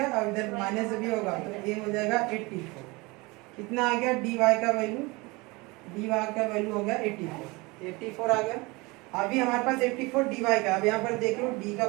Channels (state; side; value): quieter; left; 24.6 dB